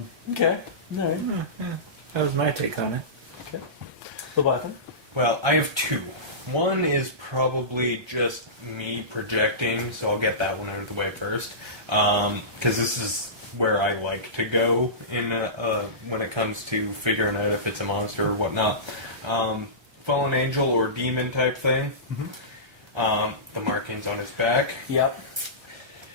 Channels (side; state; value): left; late; 1.3 ms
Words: All right. Yeah. That was my take on it. Okay. Leviathan? Well, I have 2. One is probably just me projecting, so I'll get that one out of the way first. Because this is where I like to go in when it comes to figuring out if it's a monster or whatnot. Fallen angel or demon type thing. Mm-hmm. The markings on his back. Yep.